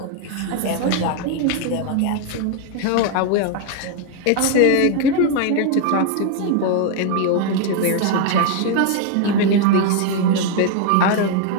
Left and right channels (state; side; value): different; both; correlation 0.01